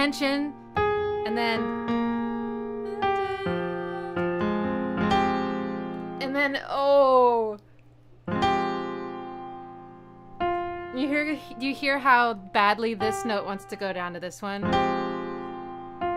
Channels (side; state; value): both; identical; correlation 1.00